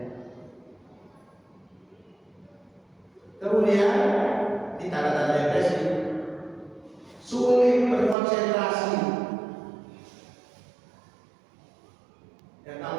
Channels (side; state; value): left; drops out; at 8.2 s